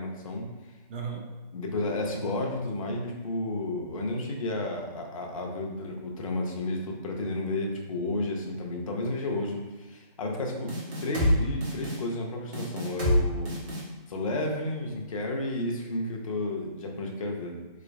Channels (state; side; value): inverted; both; correlation -0.54